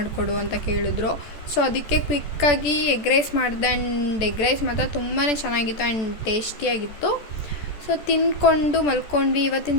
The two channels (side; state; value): right; late; 14 ms